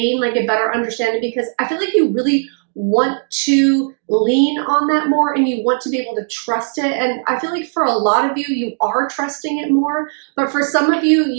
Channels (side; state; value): left; silent; digital silence